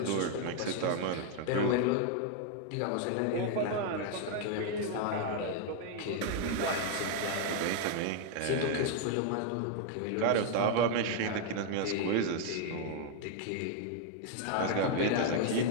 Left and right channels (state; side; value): different; both; correlation 0.00